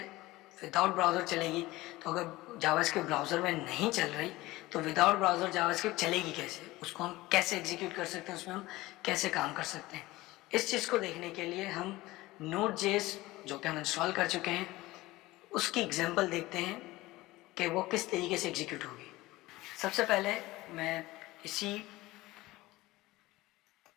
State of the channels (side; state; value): right; quieter; 19.0 dB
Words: विदाउट ब्राउज़र चलेगी। तो अगर जावास्क्रिप्ट ब्राउज़र में नहीं चल रही तो विदाउट ब्राउज़र जावास्क्रिप्ट चलेगी कैसे, उसको हम कैसे एग्जीक्यूट कर सकते हैं, उसमें हम कैसे काम कर सकते हैं। इस चीज़ को देखने के लिए हम नोड.जेएस जो कि हम इंस्टॉल कर चुके हैं उसकी एग्जांपल देखते हैं कि वो किस तरीके से एग्जीक्यूट होगी। सबसे पहले मैं इसी